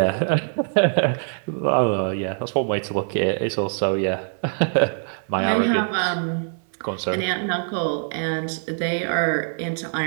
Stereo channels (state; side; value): silent; left; digital silence